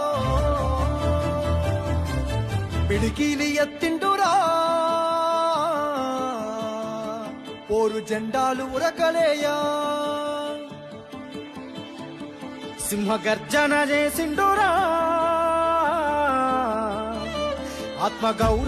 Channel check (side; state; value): both; identical; correlation 1.00